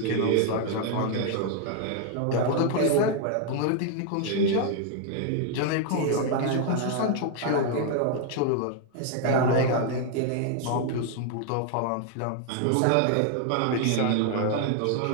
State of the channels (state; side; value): different; both; correlation 0.00